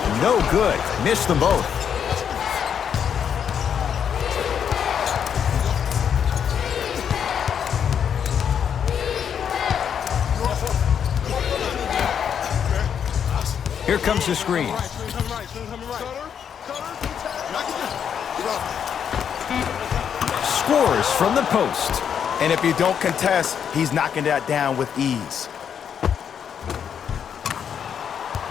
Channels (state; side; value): quieter; right; 8.0 dB